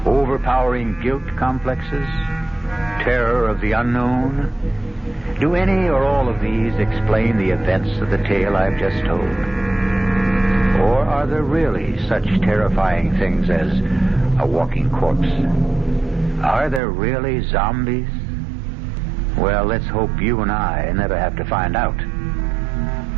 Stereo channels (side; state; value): left; drops out; at 16.8 s